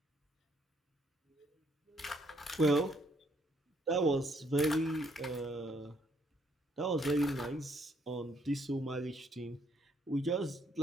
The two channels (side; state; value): both; normal; correlation 0.68